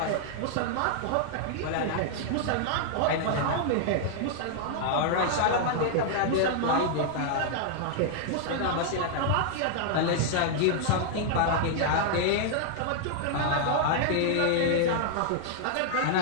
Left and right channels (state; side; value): different; both; correlation -0.01